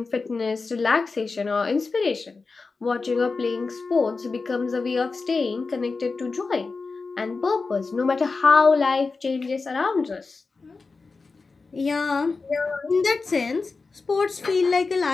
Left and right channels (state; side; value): quieter; right; 4.2 dB